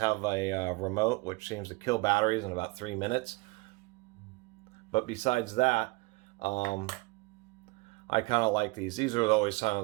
a remote, which seems to kill batteries in about 3 minutes. But besides that, I kind of like these. These are always some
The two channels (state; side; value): quieter; left; 24.7 dB